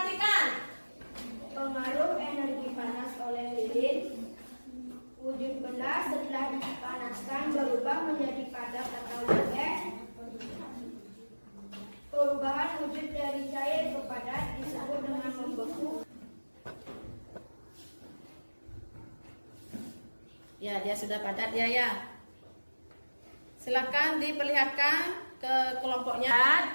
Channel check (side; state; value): both; inverted; correlation -1.00